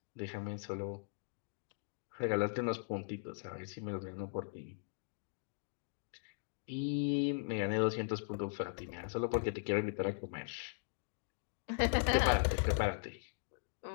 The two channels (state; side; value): silent; right; digital silence